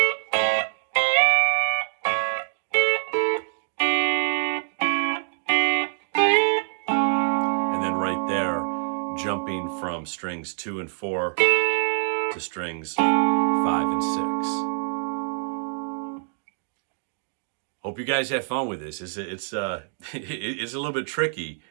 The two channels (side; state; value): left; silent; digital silence